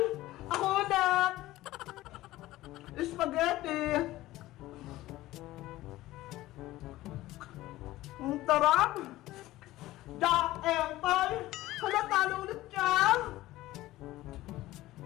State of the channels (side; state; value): right; quieter; 16.7 dB